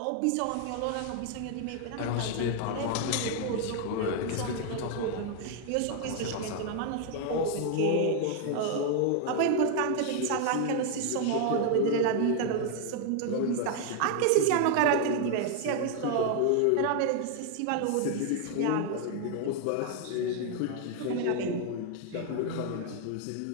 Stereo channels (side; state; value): both; different; correlation 0.00